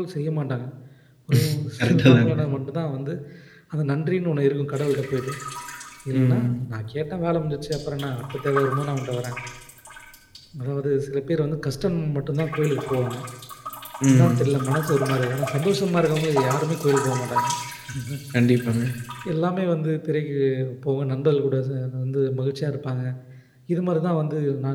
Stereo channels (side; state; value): both; identical; correlation 1.00